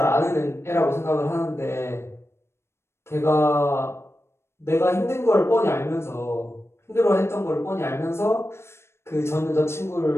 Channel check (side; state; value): right; late; 0.12 ms